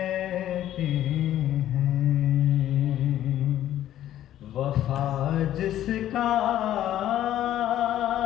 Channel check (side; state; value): right; quieter; 12.3 dB